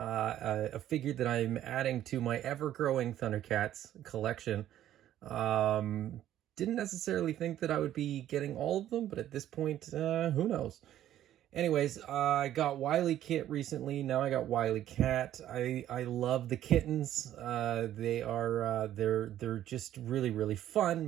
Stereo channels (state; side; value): quieter; left; 12.2 dB